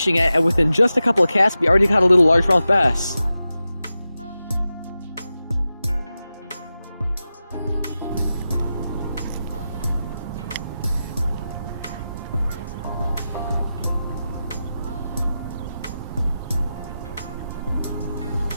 at, and within just a couple of casts, we already caught a little largemouth bass.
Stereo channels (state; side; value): inverted; both; correlation -0.92